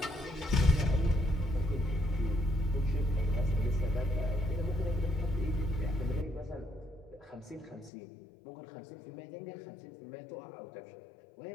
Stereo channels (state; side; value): drops out; right; at 7.9 s